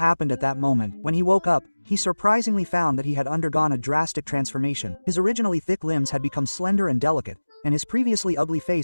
at that moment. When he woke up, he surprisingly found that he had undergone a drastic transformation. His originally thick limbs had become slender and delicate, and his previously ugly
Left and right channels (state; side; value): inverted; both; correlation -1.00